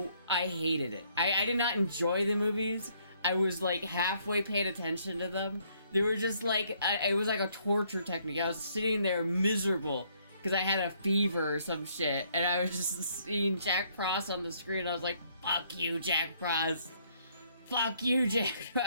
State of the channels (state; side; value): inverted; both; correlation -0.67